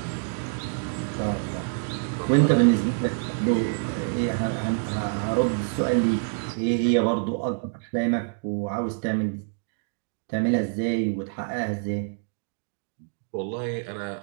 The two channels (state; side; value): silent; left; 59 dB below the other